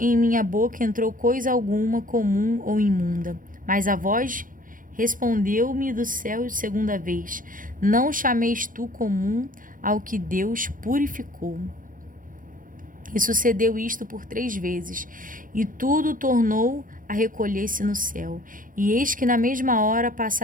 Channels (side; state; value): left; late; 0.40 ms